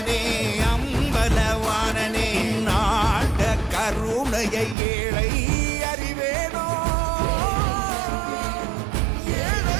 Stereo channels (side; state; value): left; drops out; at 4.8 s